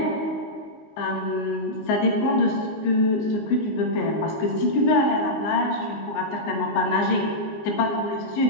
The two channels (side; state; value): right; late; 19 ms